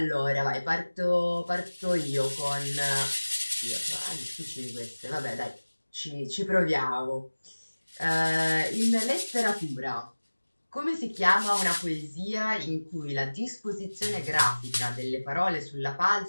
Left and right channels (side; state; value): both; inverted; correlation -1.00